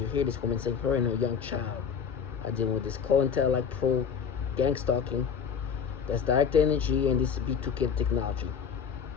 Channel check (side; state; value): right; quieter; 6.9 dB